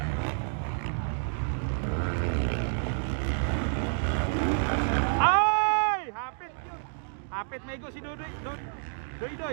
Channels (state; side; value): silent; left; 58 dB below the other